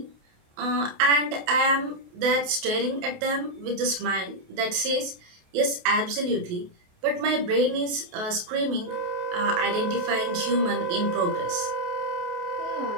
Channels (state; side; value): late; left; 28 ms